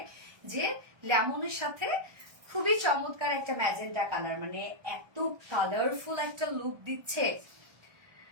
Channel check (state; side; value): late; left; 1.2 ms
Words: যে লেমনের সাথে খুবই চমৎকার একটা ম্যাজেন্টা কালার, মানে এত কালারফুল একটা লুক দিচ্ছে,